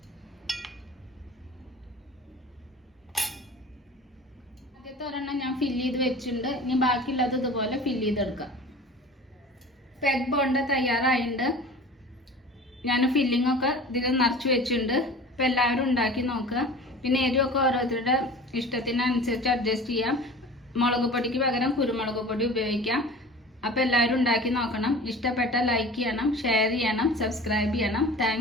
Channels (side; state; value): both; normal; correlation 0.40